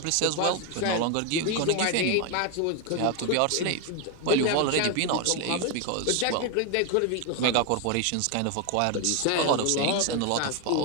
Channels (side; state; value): both; different; correlation 0.01